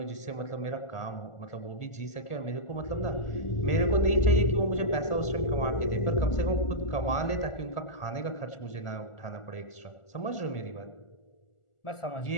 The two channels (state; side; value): late; right; 1.4 ms